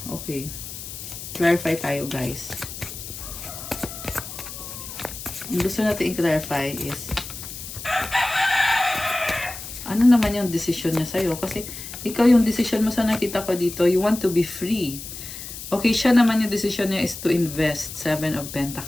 okay. Clarify tayo, guys. Ang gusto natin i-clarify is ano naman yung decision niya sa'yo? Kasi ikaw yung decision mo sa nakita ko dito, you want to be free. Okay, siya naman yung decision niya is to invest. 7 of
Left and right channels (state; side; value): noise; left; hiss, 10 dB below the sound